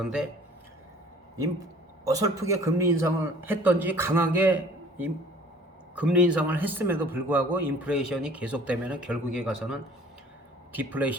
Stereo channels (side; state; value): both; normal; correlation 0.51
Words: 어설프게 금리 인상을 했던지 강하게 금리 인상을 했음에도 불구하고 인플레이션이 계속되면 결국에 가서는